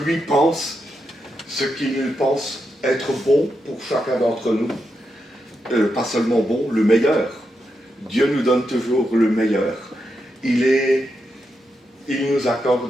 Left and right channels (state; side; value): normal; both; correlation 0.85